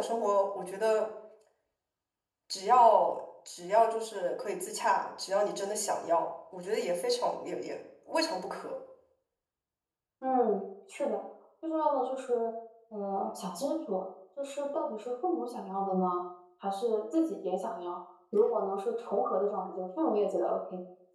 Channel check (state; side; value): identical; both; correlation 1.00